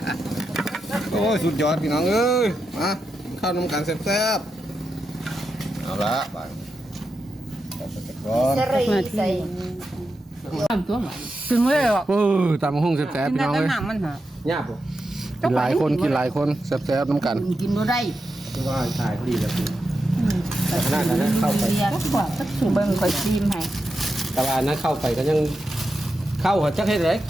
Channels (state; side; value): normal; both; correlation 0.88